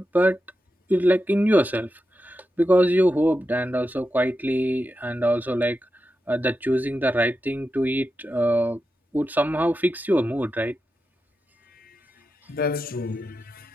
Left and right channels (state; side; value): normal; both; correlation 0.89